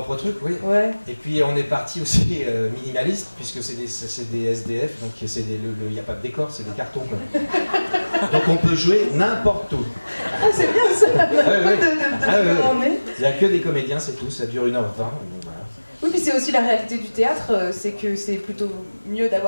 truc, oui. Ouais. Et puis on est parti aussi minimaliste, puisque c'est des SDF, donc il n'y a pas de décor, c'est des cartons. Quoi. Donc on peut jouer n'importe où. Ah, c'est bien ça. Il n'y a que des comédiens, c'est tout, ça dure 1h20. Voilà. Oui, puis c'est aussi la réalité du théâtre, c'est que c'est plutôt mieux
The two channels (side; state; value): both; inverted; correlation -1.00